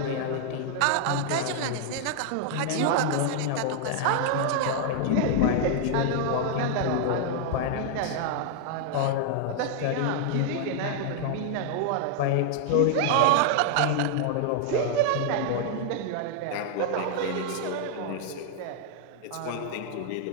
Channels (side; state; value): both; different; correlation 0.00